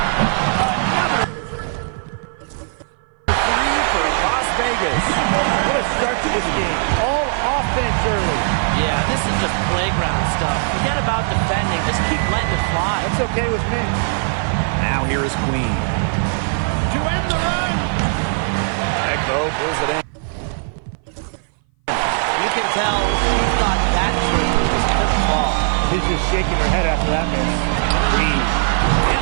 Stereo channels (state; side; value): silent; left; 60 dB below the other